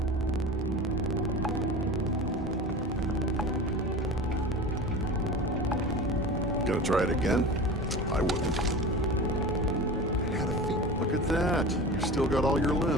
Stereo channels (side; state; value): both; normal; correlation 0.33